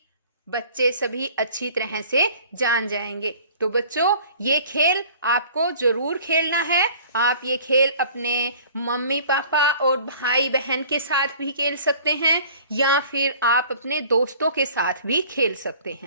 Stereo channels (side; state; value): both; inverted; correlation -0.49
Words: बच्चे सभी अच्छी तरह से जान जाएंगे। तो बच्चों, ये खेल आपको जरूर खेलना है। आप ये खेल अपने मम्मी पापा और भाई बहन के साथ भी खेल सकते हैं या फिर आप अपने दोस्तों के साथ भी खेल सकते